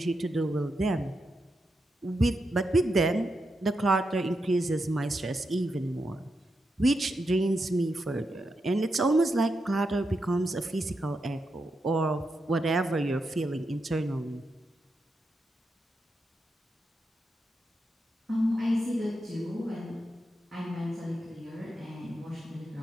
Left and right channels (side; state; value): both; normal; correlation 0.85